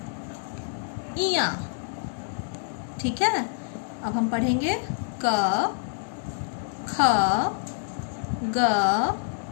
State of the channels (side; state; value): right; silent; digital silence